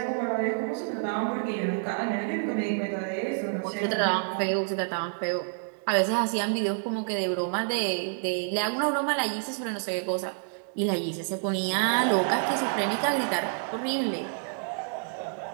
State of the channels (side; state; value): left; silent; 59 dB below the other